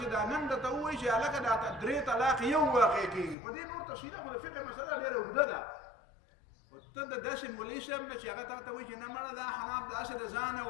چې دا نن درته ووایي چې هلکه دا 3 طلاق یو واقع کېږي، په دې نور تفصیله خو د فقه مسله ډېره اوږده ده. ته د داسې مولوي صاحب نه چې هغه تا ته وایي چې نه مړه دا حناب داسې د ځانه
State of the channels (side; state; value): right; drops out; at 3.4 s